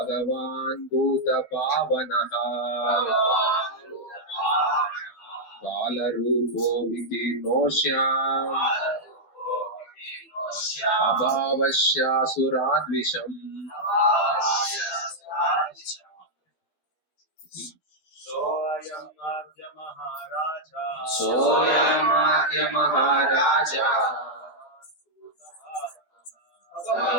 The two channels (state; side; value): late; right; 12 ms